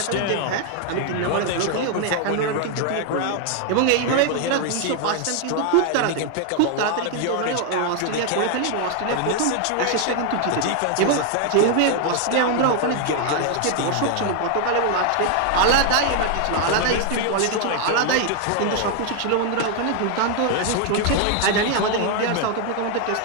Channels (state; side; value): different; both; correlation 0.00